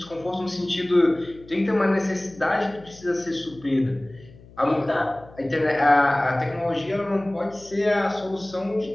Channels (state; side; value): noise; left; hum, 22 dB below the sound